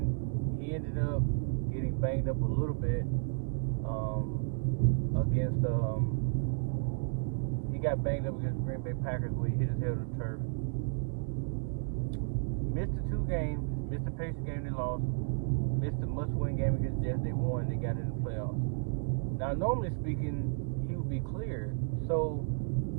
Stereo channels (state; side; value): silent; left; digital silence